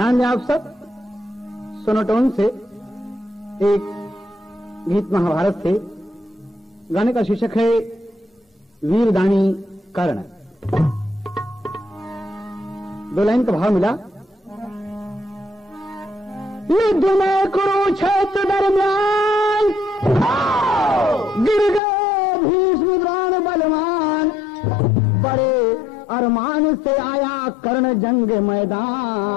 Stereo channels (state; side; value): drops out; right; at 21.8 s